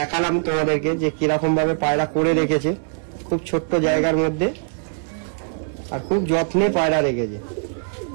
তোমাদেরকে যে কিরকম ভাবে পায়রা করে রেখেছে, খুব ছোট্ট জায়গার মধ্যে, আর খুব যত্নে পায়রা রেখেছে।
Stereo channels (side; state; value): left; silent; digital silence